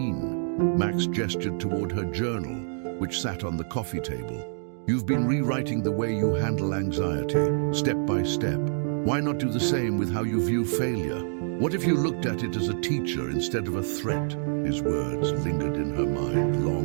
Max gestured toward her journal, which sat on the coffee table. You've been rewriting the way you handle anxiety, step by step. Why not do the same with how you view failure? What if you looked at it as a teacher instead of a threat? His words lingered in her mind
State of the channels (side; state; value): left; silent; digital silence